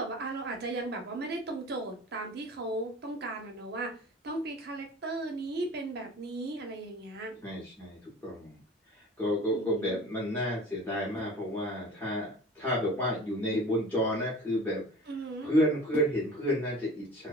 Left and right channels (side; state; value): both; normal; correlation 0.41